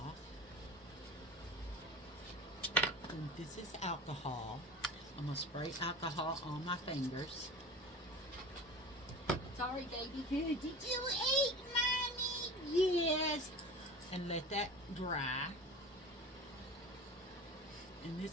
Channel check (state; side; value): normal; both; correlation 0.34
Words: And this is alcohol. I'm going to spray alcohol on my fingers. Sorry, baby. Did you eat, Mommy? Yes. And let that dry. And